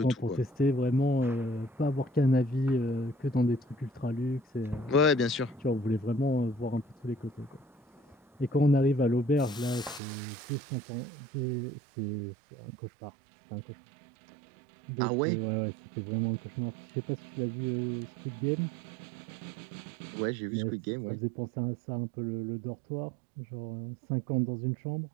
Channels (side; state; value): left; drops out; at 10.0 s